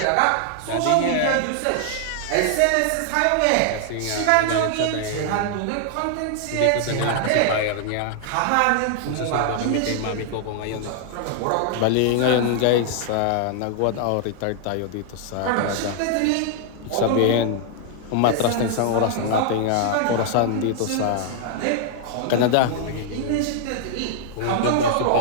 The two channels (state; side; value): different; both; correlation 0.00